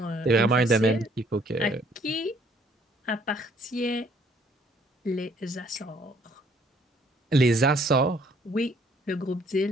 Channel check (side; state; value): both; normal; correlation 0.63